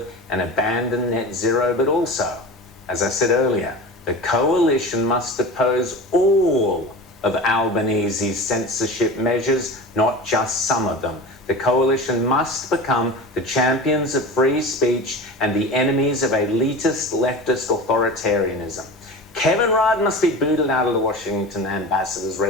and abandon net zero, but also, as I said earlier, the coalition must oppose all of Albanese's censorship measures, not just some of them. The coalition must become the champions of free speech and the enemies of elitist leftist authoritarianism. Kevin Rudd must be booted out of the Washington ambassador's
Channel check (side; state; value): both; normal; correlation 0.32